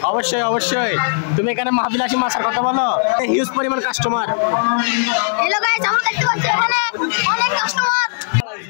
অবশ্যই অবশ্যই। তুমি এখানে মাহফিল আসি মাছের কথা বলো, হিউজ পরিমাণ কাস্টমার। হ্যালো গাইস, আমরা দেখতে পাচ্ছি এখানে অনেক কাস্টমার।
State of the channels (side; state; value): right; silent; digital silence